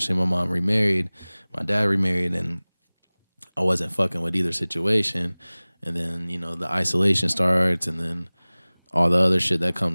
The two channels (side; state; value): both; inverted; correlation -1.00